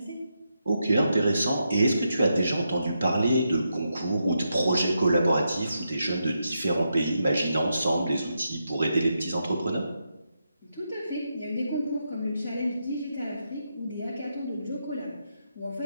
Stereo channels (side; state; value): both; inverted; correlation -0.83